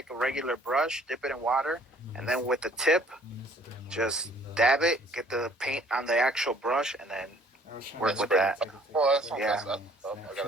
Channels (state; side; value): normal; both; correlation 0.57